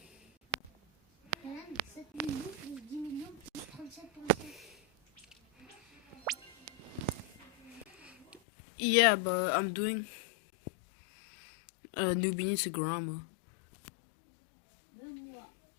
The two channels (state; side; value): drops out; right; at 8.4 s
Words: Yeah, but I'm doing Noobi To Drag.